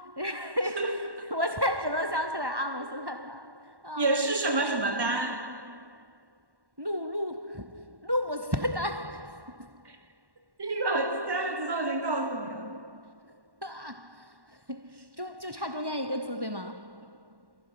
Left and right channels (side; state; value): left; late; 1.1 ms